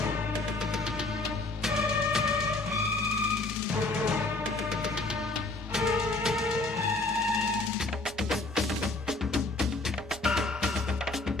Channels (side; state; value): right; quieter; 3.2 dB